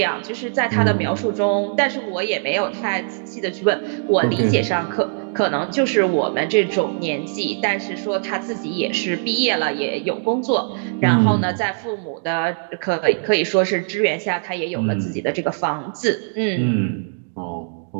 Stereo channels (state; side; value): silent; left; 65 dB below the other